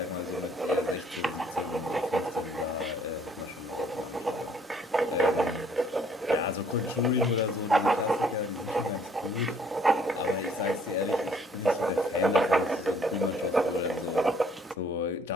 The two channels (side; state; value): both; normal; correlation 0.61